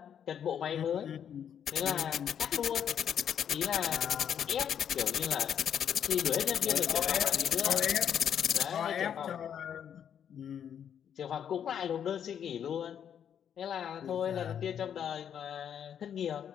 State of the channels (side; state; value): right; quieter; 8.7 dB